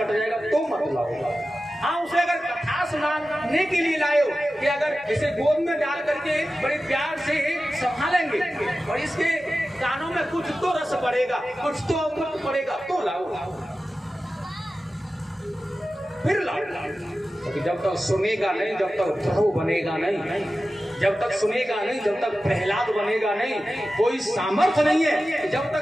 जाएगा, तो मत लाओ। हाँ, उसे अगर कथा सुनाने के लिए लाओ कि अगर इसे गोद में डाल करके बड़े प्यार से संभालेंगे और इसके कानों में कुछ तो रस पड़ेगा, कुछ तो अमृत पड़ेगा, तो लाओ, फिर लाओ। क्योंकि जब तक सुनेगा नहीं, जब तक ध्रुव बनेगा नहीं, जब तक सुनेगा नहीं, जब तक प्रहलाद बनेगा नहीं, कोई सामर्थ्य नहीं है। जब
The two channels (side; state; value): both; normal; correlation 0.94